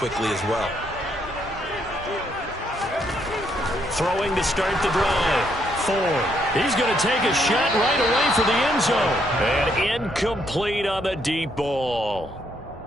as well. Throwing to start the drive. Ford. He's going to take a shot right away for the end zone. And incomplete on the deep ball.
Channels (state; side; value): normal; both; correlation 0.73